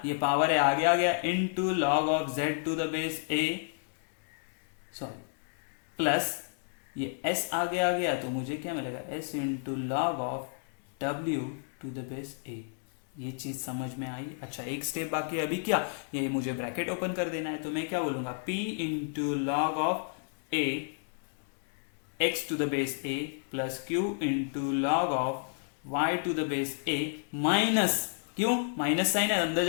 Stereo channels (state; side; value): silent; right; digital silence